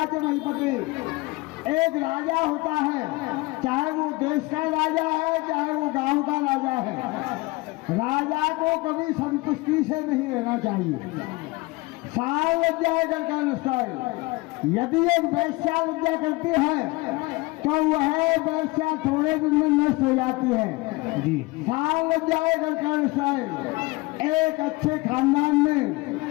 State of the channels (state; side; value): quieter; right; 23.0 dB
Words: के नहीं पति। एक राजा होता है, चाहे वो देश का राजा है चाहे वो गांव का राजा है। राजा को कभी संतुष्टि से नहीं रहना चाहिए। साल लग जाएगा कर। यदि एक वैश्या लज्जा करती है तो वह वैश्या थोड़े दिन में नष्ट हो जाती है जी। साल लग जाएगा कर। एक अच्छे खानदान